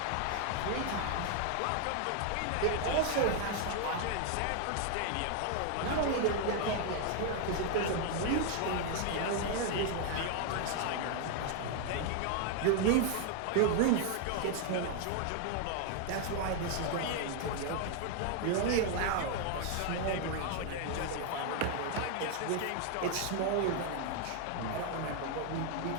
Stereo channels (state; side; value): different; both; correlation 0.00